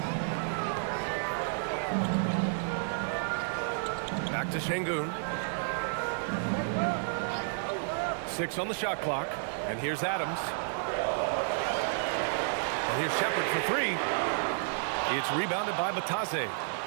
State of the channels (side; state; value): left; silent; 57 dB below the other